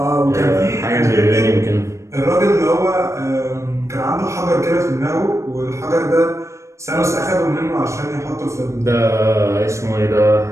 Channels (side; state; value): left; late; 0.14 ms